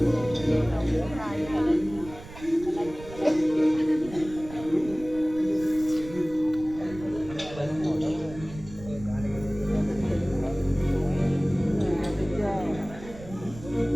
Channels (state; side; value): noise; right; rumble, 16 dB below the sound